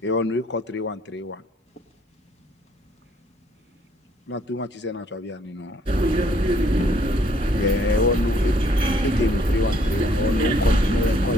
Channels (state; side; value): normal; both; correlation 0.64